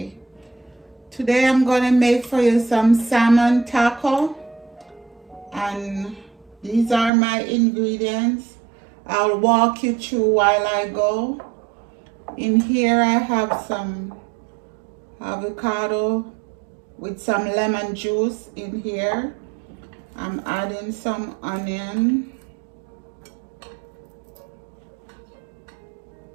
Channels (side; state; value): left; drops out; at 7.1 s